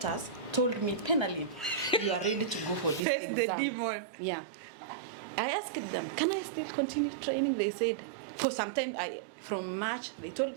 told me, Penally, you are ready to go for this Face exam. the demon. Yeah. I asked them, can I still continue training? They said, for some time, from March, they told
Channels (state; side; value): drops out; left; at 3.0 s